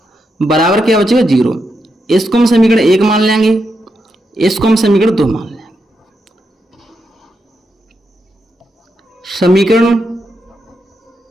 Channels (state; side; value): normal; both; correlation 0.84